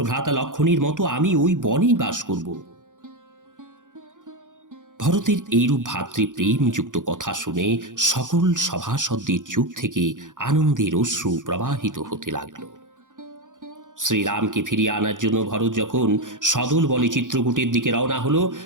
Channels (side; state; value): left; late; 0.87 ms